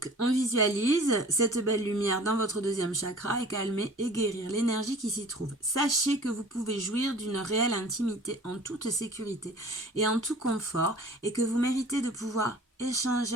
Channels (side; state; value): both; normal; correlation 0.46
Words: on visualise cette belle lumière dans votre deuxième chakra et calmer et guérir l'énergie qui s'y trouve. Sachez que vous pouvez jouir d'une réelle intimité en toute sécurité et en tout confort et que vous méritez de pouvoir